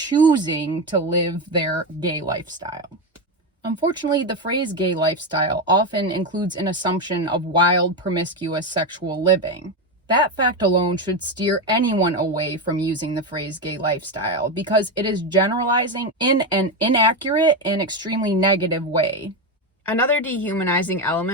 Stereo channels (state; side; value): normal; both; correlation 0.12